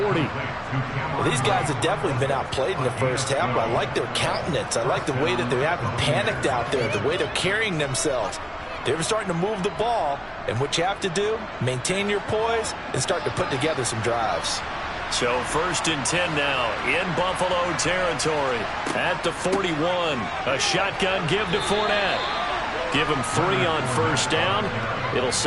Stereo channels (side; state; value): both; identical; correlation 1.00